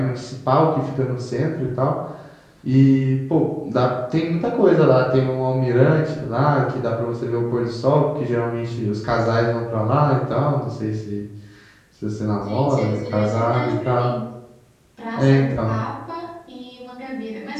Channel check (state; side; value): identical; both; correlation 1.00